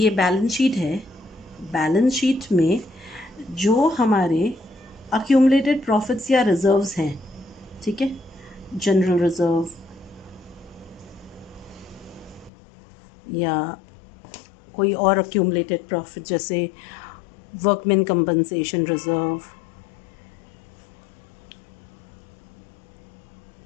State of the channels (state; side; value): drops out; right; at 12.5 s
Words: बैलेंस शीट है, बैलेंस शीट में जो हमारे अक्यूमुलेटेड प्रॉफिट्स या रिजर्व्स हैं, ठीक है, जनरल रिजर्व या कोई और अक्यूमुलेटेड प्रॉफिट जैसे वर्कमैन कंपनसेशन रिजर्व,